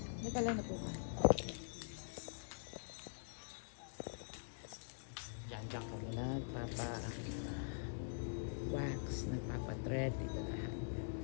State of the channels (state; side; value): silent; right; digital silence